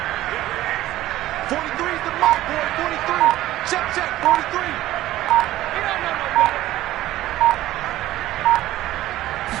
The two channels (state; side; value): quieter; left; 15.1 dB